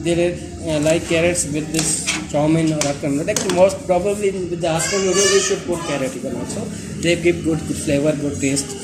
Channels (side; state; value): both; identical; correlation 1.00